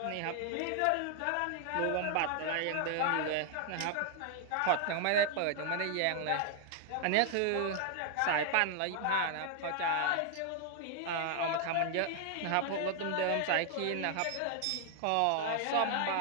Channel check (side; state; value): both; different; correlation 0.00